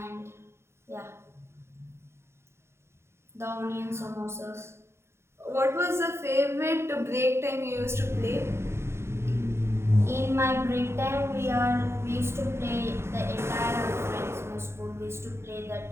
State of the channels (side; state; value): left; late; 0.13 ms